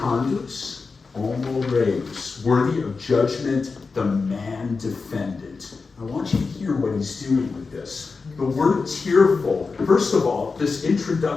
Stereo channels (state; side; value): quieter; right; 4.5 dB